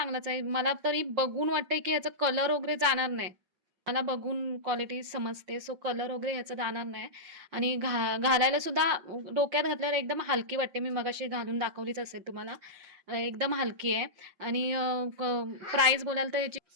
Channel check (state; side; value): late; left; 5.7 ms